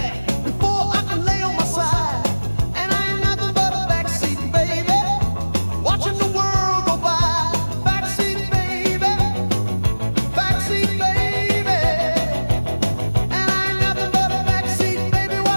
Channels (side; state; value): both; inverted; correlation -1.00